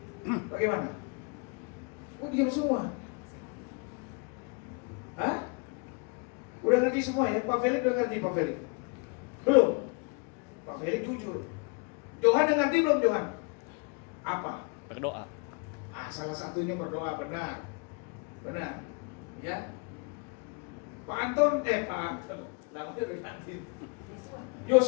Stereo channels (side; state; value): right; quieter; 33.9 dB